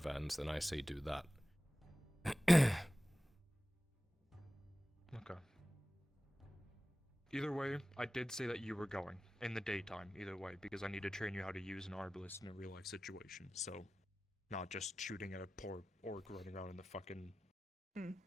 then I say do that. Okay. Either way, I did say that you were going in the daytime, either way, because I need to train you how to use an arbalist in a real life situation, so not just shooting at a poor orc running around in the fucking,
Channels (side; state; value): both; normal; correlation 0.95